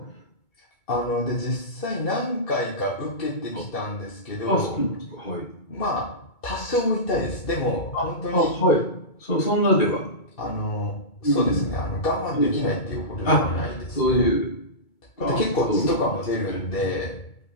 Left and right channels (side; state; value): right; late; 2.2 ms